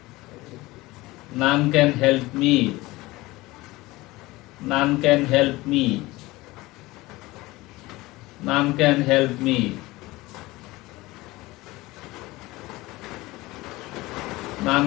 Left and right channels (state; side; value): quieter; right; 20.1 dB